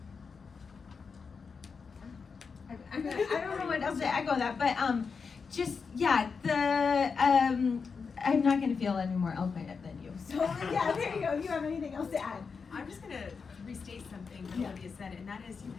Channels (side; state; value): right; quieter; 5.3 dB